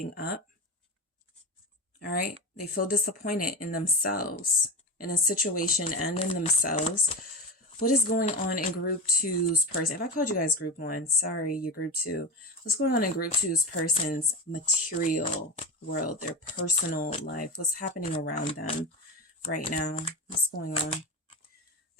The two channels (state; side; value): normal; both; correlation 0.22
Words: up. All right. They feel disappointed in themselves, in a situation and in themselves. What is going on in group two's person? If I called you guys group one, sorry, you're group two. What's going on in group two's person's material world, their personal life? What's happening around them right now? What's going on?